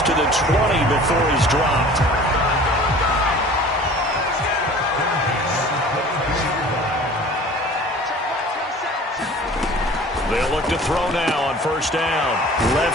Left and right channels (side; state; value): both; normal; correlation 0.45